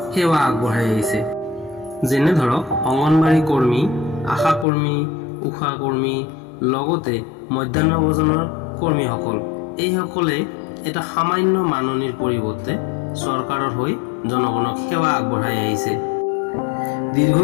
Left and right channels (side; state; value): right; drops out; at 4.7 s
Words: সেৱা আগবঢ়াই আহিছে। যেনে ধৰক অংগনবাড়ী কৰ্মী, আশা কৰ্মী, উষা কৰ্মী, লগতে মধ্যাহ্ন ভোজনৰ কৰ্মীসকল, এইসকলে এটা সামান্য মাননিৰ পৰিৱৰ্তে চৰকাৰৰ হৈ জনগণক সেৱা আগবঢ়াই আহিছে।